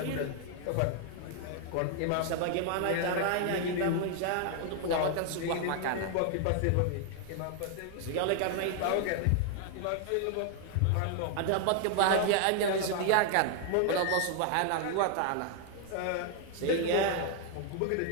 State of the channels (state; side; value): different; both; correlation 0.00